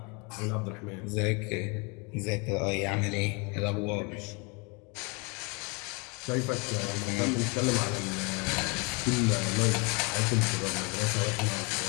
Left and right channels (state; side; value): quieter; right; 30.8 dB